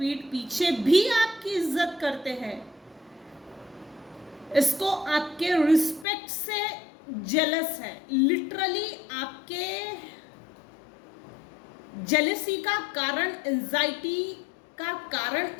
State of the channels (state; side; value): drops out; right; at 6.1 s